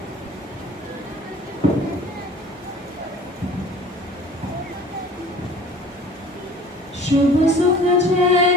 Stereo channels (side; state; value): both; normal; correlation 0.46